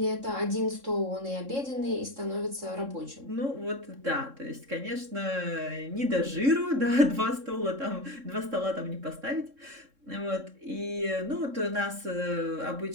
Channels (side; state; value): left; late; 3.7 ms